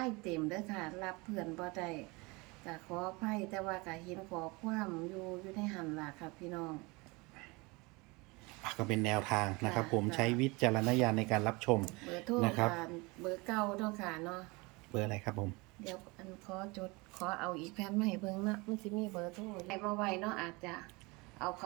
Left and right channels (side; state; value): left; quieter; 25.8 dB